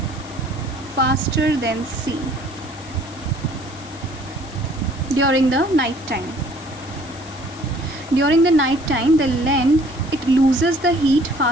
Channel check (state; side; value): noise; left; hiss, 20 dB below the sound